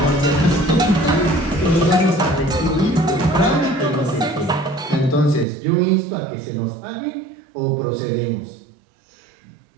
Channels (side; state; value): left; drops out; at 5.5 s